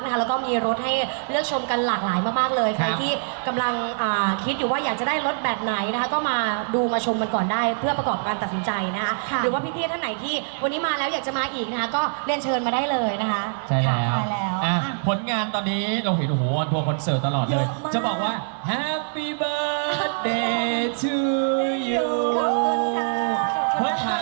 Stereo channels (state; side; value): silent; left; digital silence